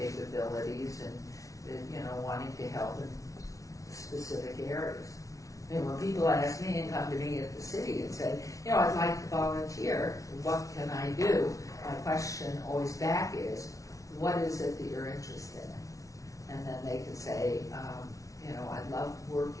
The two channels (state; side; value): late; right; 0.17 ms